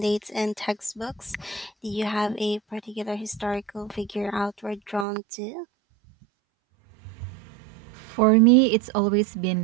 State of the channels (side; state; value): left; drops out; at 5.1 s